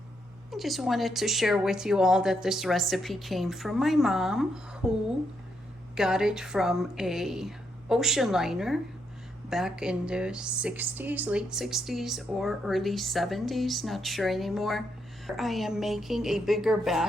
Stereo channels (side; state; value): both; normal; correlation 0.79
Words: just wanted to share with you all that this recipe came from my mom, who got it from a ocean liner back in the 60s, late 60s or early 70s, not sure anymore. I am making a bigger